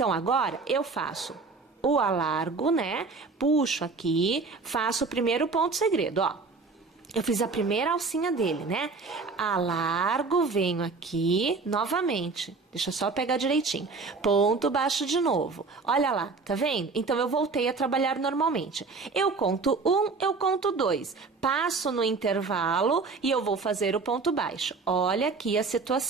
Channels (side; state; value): left; quieter; 4.2 dB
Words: agora, eu faço o alargo, né? Puxo aqui, faço o primeiro ponto segredo, ó. Eu fiz a primeira alcinha dele, né? Alargo, venho aqui, novamente. Deixa eu só pegar direitinho. Ponto baixo de novo. Olha lá, tá vendo? Então, eu voltei a trabalhar normalmente. Eu conto 1, eu conto 2. Passo no intervalo e eu vou fazer o ponto baixo. Olha aqui a